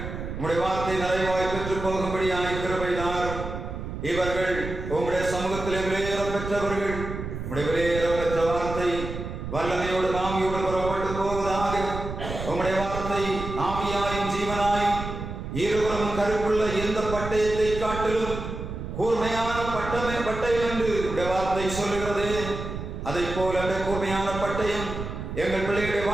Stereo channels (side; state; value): right; noise; rumble, 7 dB below the sound